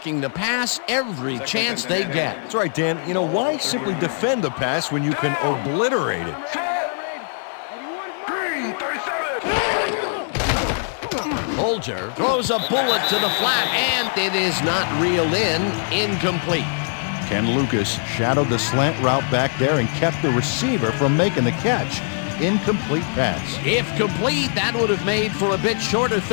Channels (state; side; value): silent; right; 64 dB below the other